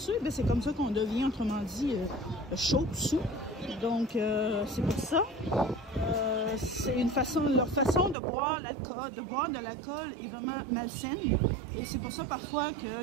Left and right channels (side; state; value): left; drops out; at 8.2 s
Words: ben, c'est comme ça qu'on devient, autrement dit, chaud, sous. Donc, c'est pour ça. C'est leur façon de boire de l'alcool est vraiment malsaine. Et c'est pour ça parfois